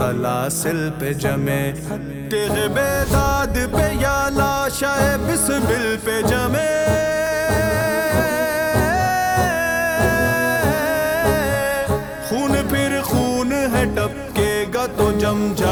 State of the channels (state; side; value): identical; both; correlation 1.00